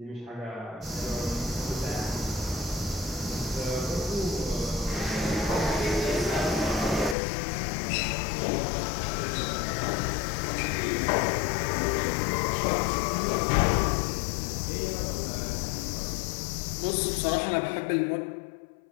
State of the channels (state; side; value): drops out; right; at 7.2 s